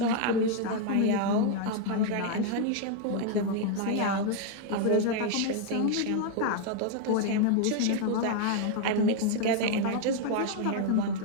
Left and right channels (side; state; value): both; different; correlation 0.00